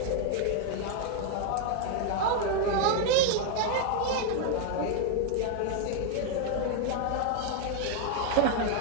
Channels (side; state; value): both; different; correlation 0.00